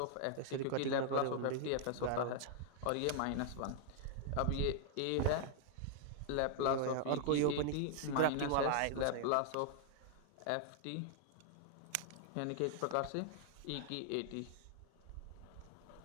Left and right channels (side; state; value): both; different; correlation 0.00